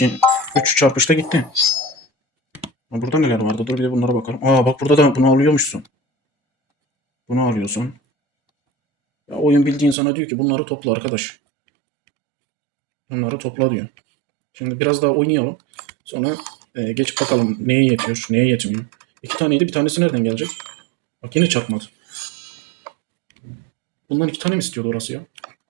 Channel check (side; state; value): left; drops out; at 10.0 s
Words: 3 çarpışta gitti. Burada neler vardı? Dur bir de bunlara bakalım. Aa bak burada da bunu alıyormuşsun. Bunu alıyorsun. Ya oyun bildiğin sana diyor ki bunları topla arkadaş. Bunları topla diyor. Şimdi biraz daha oynayalım. Sonra geç bakalım neye yetiyor, neye yetmiyor. 2 taneydi, bir tanesi nereden gelecek? Bak yine çarpmadı. Bundan 2 tane mi istiyordu orası ya?